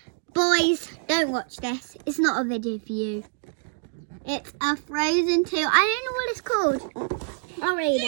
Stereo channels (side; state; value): left; silent; digital silence